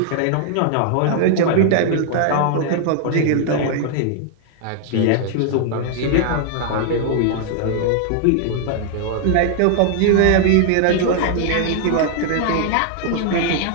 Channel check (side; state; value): both; different; correlation 0.00